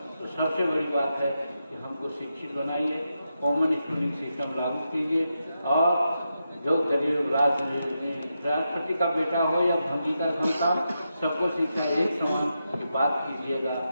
तो सबसे बड़ी बात है कि हमको शिक्षित बनाइए, कॉमन स्कूलिंग सिस्टम लागू कीजिए और जो गरीब राष्ट्रपति का बेटा हो या भंगी का संतान, सबको शिक्षा एक समान की बात कीजिएगा,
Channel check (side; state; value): both; inverted; correlation -0.86